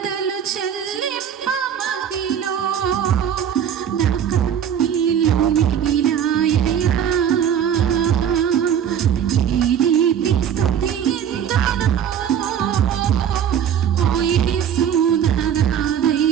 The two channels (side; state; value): left; quieter; 9.0 dB